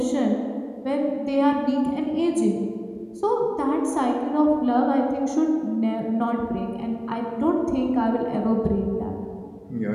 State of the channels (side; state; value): both; identical; correlation 1.00